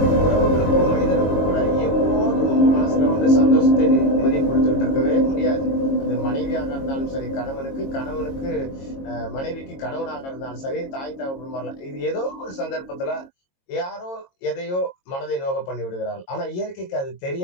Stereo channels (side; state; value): right; late; 22 ms